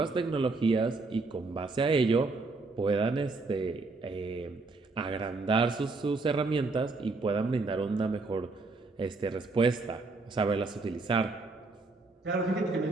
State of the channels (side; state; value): left; quieter; 3.6 dB